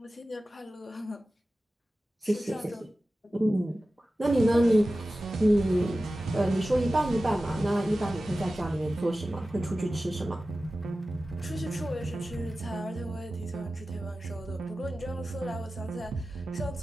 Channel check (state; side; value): normal; both; correlation 0.95